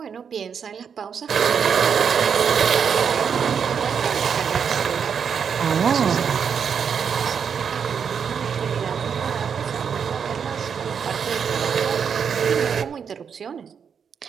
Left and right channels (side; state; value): left; quieter; 7.0 dB